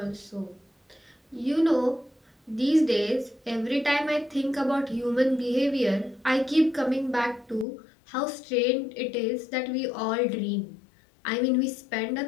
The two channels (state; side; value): drops out; right; at 7.7 s